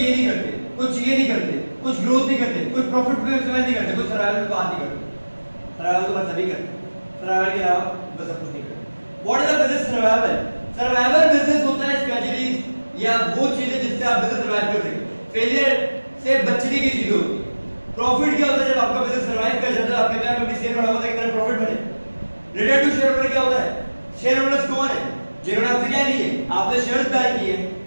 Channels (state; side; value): inverted; both; correlation -1.00